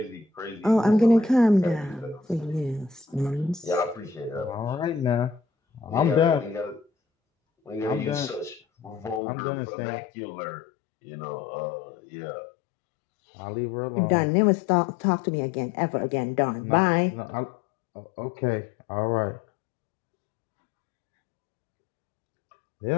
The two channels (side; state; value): right; drops out; at 9.2 s